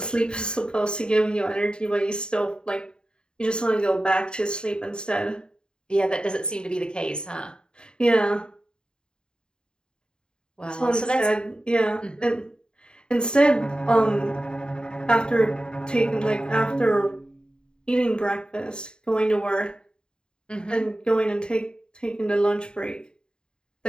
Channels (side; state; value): right; late; 0.049 ms